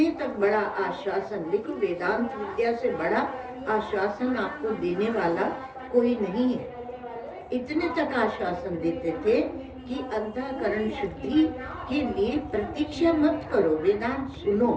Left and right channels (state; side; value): identical; both; correlation 1.00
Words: तक बड़ा आश्वासन, देखो वेदांत विद्या से बड़ा आश्वासन आपको देने वाला कोई नहीं है। इतने तक आश्वासन देते थे कि अंतःकरण शुद्धि के लिए प्रतीक्षा मत करो, वेदांत सुनो।